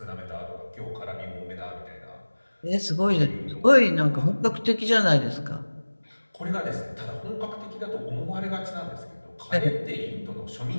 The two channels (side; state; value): both; inverted; correlation -1.00